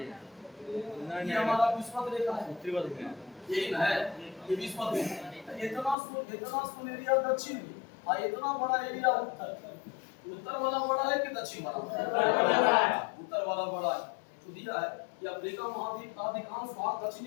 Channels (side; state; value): right; drops out; at 6.0 s